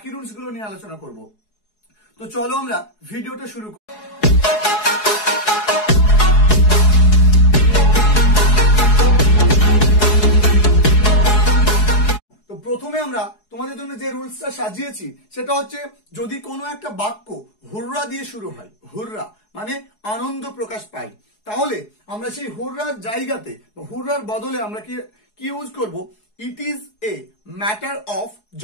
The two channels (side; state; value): right; late; 4.8 ms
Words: রুলস গুলো নিয়ে আলোচনা করব। তো চলো আমরা ভিডিওটা শুরু করি। তো প্রথমে আমরা তোমাদের জন্য যে রুলসটা সাজিয়েছি সেটা হচ্ছে, যদি কোনো একটা বাক্য হুররা দিয়ে শুরু হয়, হুররা মানে আনন্দ প্রকাশ পাই, তাহলে আমরা সেই হুররার জায়গাতে হুররার বদলে আমরা কি ইউজ করব? It is a matter of